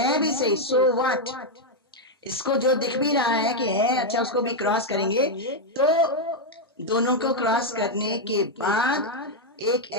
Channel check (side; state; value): both; normal; correlation 0.00